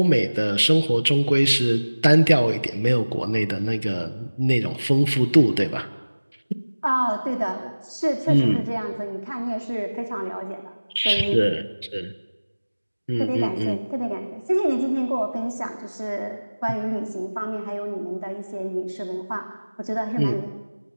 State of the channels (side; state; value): both; inverted; correlation -1.00